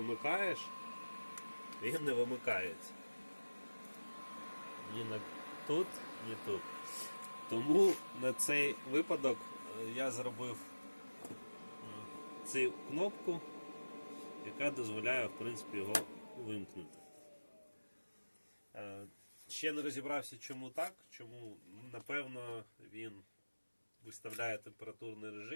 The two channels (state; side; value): inverted; both; correlation -1.00